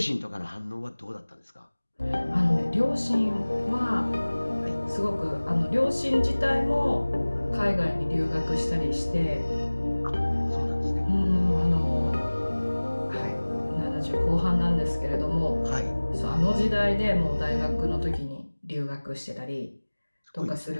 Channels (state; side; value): inverted; both; correlation -1.00